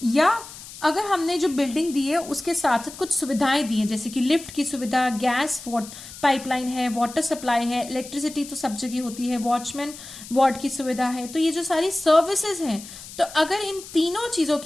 या अगर हमने जो बिल्डिंग दी है उसके साथ साथ कुछ सुविधाएं दी हैं, जैसे कि लिफ्ट की सुविधा, गैस पाइपलाइन है, वाटर सप्लाई है, इलेक्ट्रिसिटी तो सब जगह होती है, वॉचमैन वार्ड की सुविधा है। तो ये जो सारी सर्विसेज हैं, तो अगर इन तीनों चीजों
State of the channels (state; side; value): noise; left; hiss, 15 dB below the sound